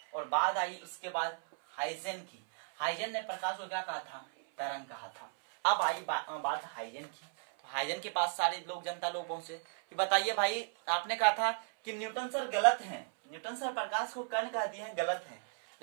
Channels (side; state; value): left; silent; 54 dB below the other